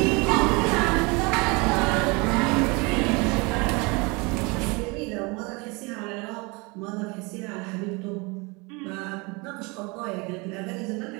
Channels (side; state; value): left; quieter; 27.8 dB